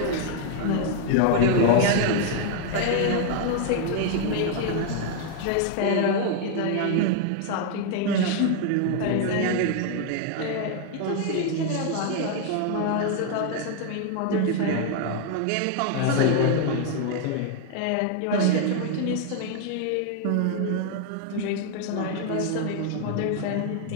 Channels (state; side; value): different; both; correlation 0.00